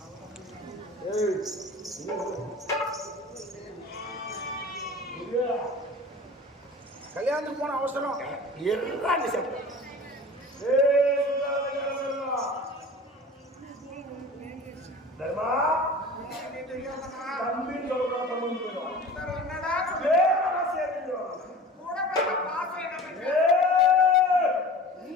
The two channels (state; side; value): normal; both; correlation 0.39